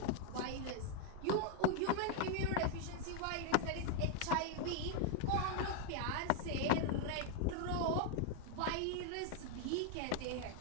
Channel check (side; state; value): both; different; correlation 0.00